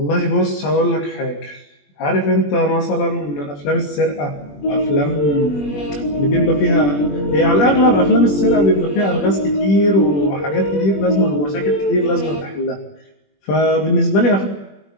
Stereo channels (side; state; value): right; late; 21 ms